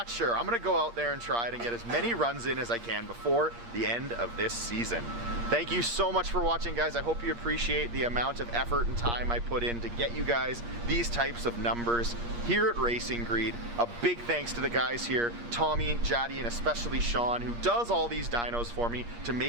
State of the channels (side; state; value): left; late; 8.5 ms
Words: sure. I'm gonna go out there and try it and get as many runs in as I can before the end of this season. Thank you so much for watching, guys. I hope you appreciate the amount of effort and time I put in to get you guys these types of numbers here at Racing Greed. A big thanks to the guys here, Tommy, Jaddy, and especially Sean, who does all these dynos for me to